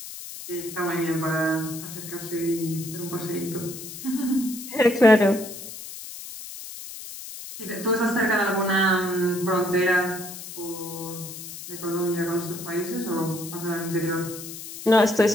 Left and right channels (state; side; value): noise; left; hiss, 11 dB below the sound